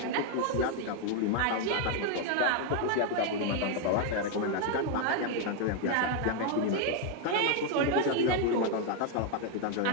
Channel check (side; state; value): both; different; correlation 0.01